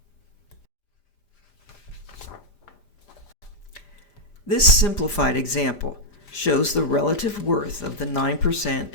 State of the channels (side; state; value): right; late; 4.9 ms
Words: This simplified example shows the relative worth of the 9%